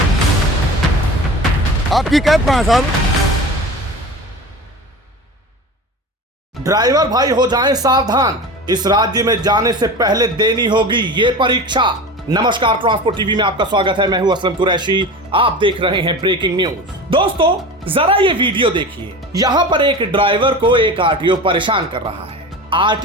आपकी कैब कहाँ है साहब? ड्राइवर भाई हो जाएं सावधान, इस राज्य में जाने से पहले देनी होगी ये परीक्षा। नमस्कार, ट्रांसपोर्ट टीवी में आपका स्वागत है। मैं हूं असलम कुरैशी, आप देख रहे हैं ब्रेकिंग न्यूज। दोस्तों जरा ये वीडियो देखिए। यहाँ पर एक ड्राइवर को एक आरटीओ परेशान कर रहा है।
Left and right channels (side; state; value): both; normal; correlation 0.32